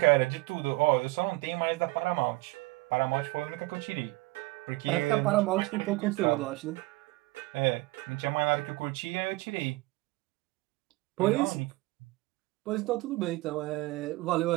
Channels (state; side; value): quieter; left; 21.7 dB